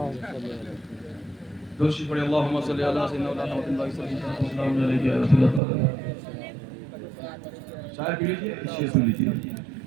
دوشی پڑے اللہم صلی اللہ سیدنا محمد صلی اللہ علیہ وسلم. چائے پی لیجیے، شیئر سن لیجیے.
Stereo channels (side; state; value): left; drops out; at 5.6 s